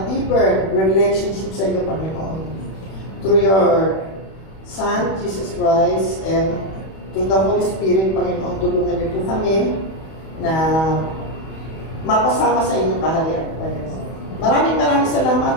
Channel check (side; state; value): right; late; 31 ms